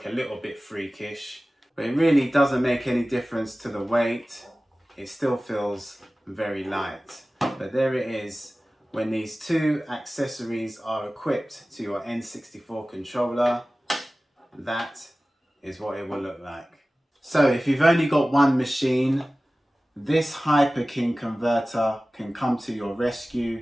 a little bit freakish. But it really doesn't make any difference to the weight. It still feels very light. But there it is. When these two accessories are equipped to your N64 controller, that is what it will look like. So if you've only got one machine, this Hyperking converter can come to your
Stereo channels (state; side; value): normal; both; correlation 0.97